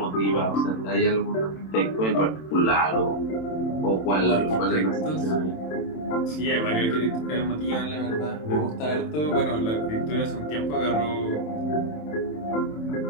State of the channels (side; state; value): right; late; 27 ms